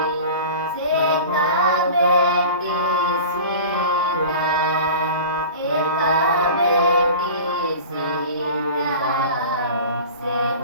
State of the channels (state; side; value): inverted; both; correlation -0.37